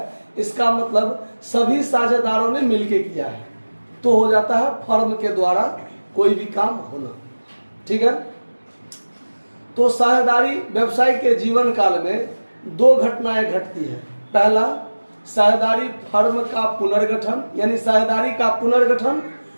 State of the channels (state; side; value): inverted; both; correlation -1.00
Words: इसका मतलब सभी साझेदारों ने मिलकर किया है, तो हो जाता है फर्म के द्वारा कोई भी काम होना। ठीक है। तो साझेदारी व्यवसाय के जीवन काल में दो घटनाएं घटती है। पहला, साझेदारी फर्म का पुनर्गठन यानी साझेदारी का पुनर्गठन,